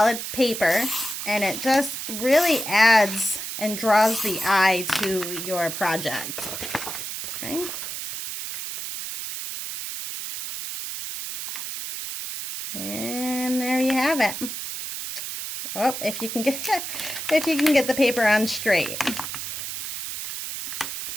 paper, and it just really adds and draws the eye to your project. Okay. And there you have it. Oh, if you can get the paper on straight.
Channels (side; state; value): right; noise; hiss, 6 dB below the sound